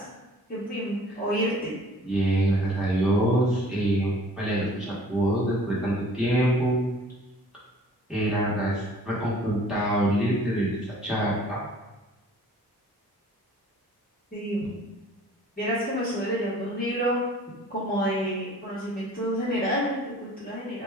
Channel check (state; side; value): normal; both; correlation 0.51